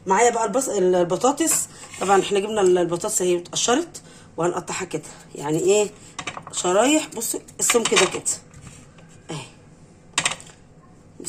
معايا بقى البطاطس. طبعا احنا جبنا البطاطس اهي اتقشرت، وهنقطعها كده يعني ايه، شرايح. بصوا السمك كده كده اهي.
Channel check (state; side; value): identical; both; correlation 1.00